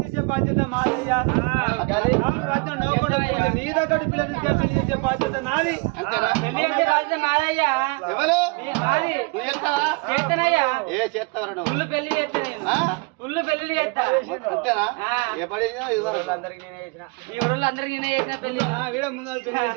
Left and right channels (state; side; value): quieter; left; 29.4 dB